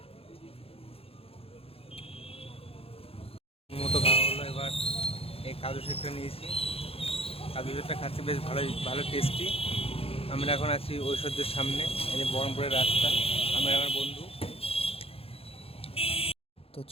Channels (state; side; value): late; right; 0.28 ms